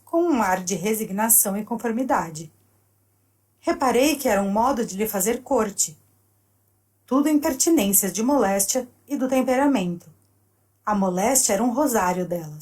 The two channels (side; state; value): both; identical; correlation 1.00